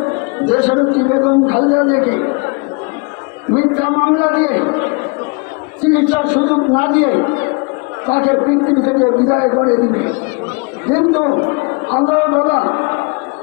দেশনেত্রী বেগম খালেদা জিয়াকে মিথ্যা মামলা দিয়ে চিকিৎসার সুযোগ না দিয়ে তাকে পৃথিবী থেকে বিদায় করে দিবে। কিন্তু আল্লাহ দাদা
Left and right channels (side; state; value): right; quieter; 31.1 dB